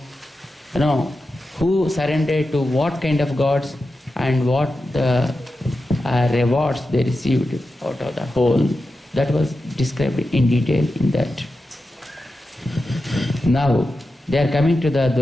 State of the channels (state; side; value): normal; both; correlation 0.91